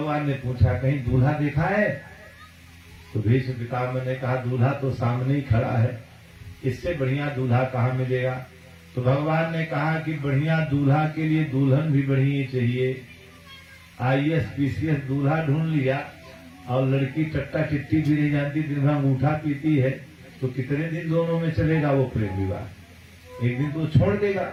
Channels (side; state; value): both; identical; correlation 1.00